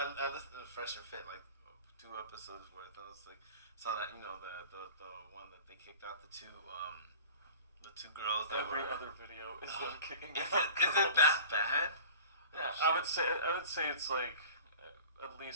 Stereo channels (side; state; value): both; inverted; correlation -0.41